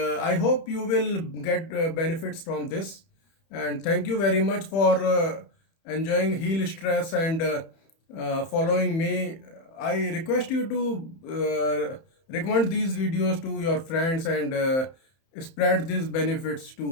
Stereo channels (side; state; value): right; late; 31 ms